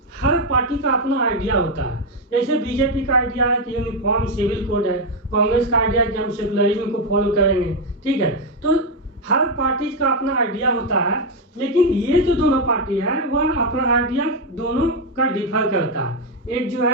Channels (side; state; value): both; normal; correlation 0.04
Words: हर पार्टी का अपना आइडिया होता है। जैसे बीजेपी का आइडिया है कि यूनिफॉर्म सिविल कोड है, कांग्रेस का आइडिया है कि हम सेकुलरिज्म को फॉलो करेंगे, ठीक है। तो हर पार्टी का अपना आइडिया होता है, लेकिन ये जो दोनों पार्टी है वह अपना आइडिया दोनों का डिफर करता है। एक जो